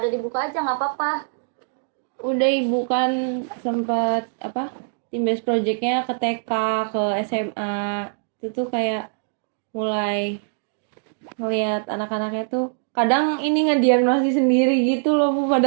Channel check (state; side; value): silent; left; digital silence